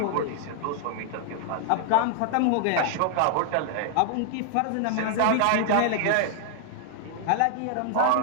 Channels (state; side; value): different; both; correlation 0.00